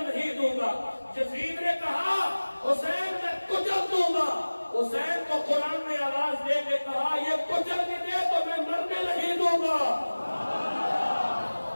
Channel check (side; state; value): both; inverted; correlation -1.00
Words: نہیں دوں گا. یزید نے کہا حسین میں کچل دوں گا. حسین کو قرآن نے آواز دے کے کہا یہ کچل بھی دے تو میں مرنے نہیں دوں گا.